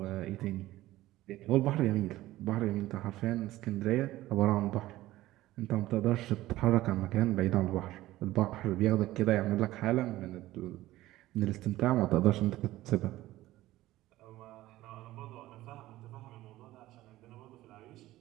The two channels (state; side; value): quieter; left; 16.2 dB